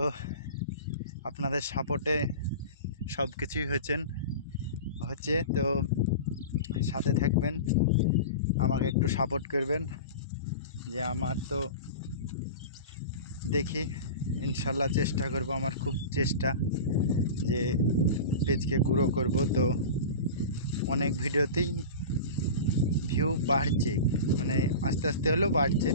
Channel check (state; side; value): inverted; both; correlation -0.31